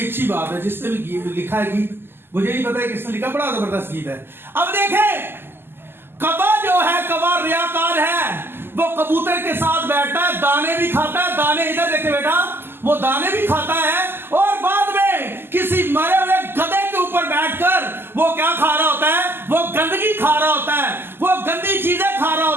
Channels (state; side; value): late; left; 0.11 ms